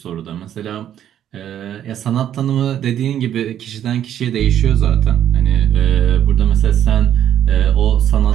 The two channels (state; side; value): quieter; left; 10.5 dB